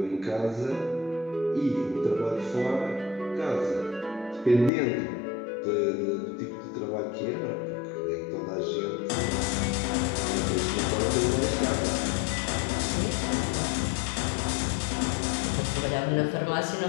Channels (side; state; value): right; drops out; at 4.7 s